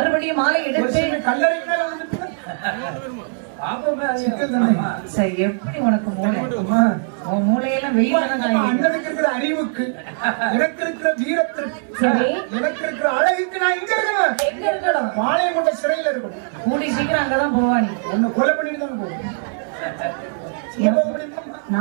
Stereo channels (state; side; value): silent; left; 65 dB below the other